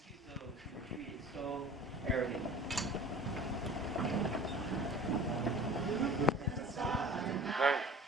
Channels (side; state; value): both; normal; correlation 0.42